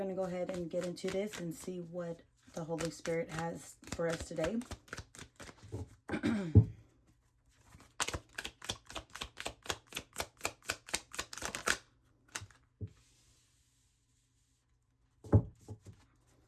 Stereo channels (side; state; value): both; identical; correlation 1.00